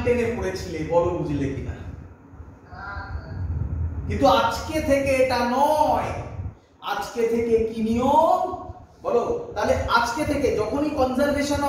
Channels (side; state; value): both; identical; correlation 1.00